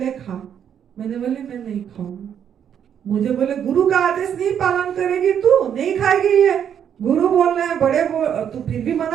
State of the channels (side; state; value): left; quieter; 8.7 dB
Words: खा। मैंने बोले मैं नहीं खाऊंगी। मुझे बोले गुरु का आदेश नहीं पालन करेगी तू, नहीं खाएगी ये, गुरु बोल रहे हैं, बड़े तू फिर भी